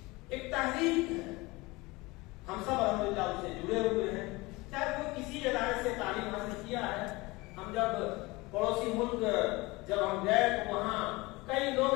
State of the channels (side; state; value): right; quieter; 22.9 dB